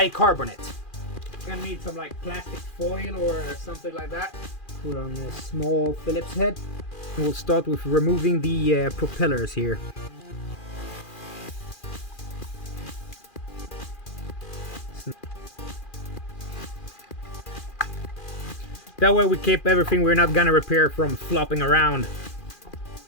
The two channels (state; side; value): late; right; 2.4 ms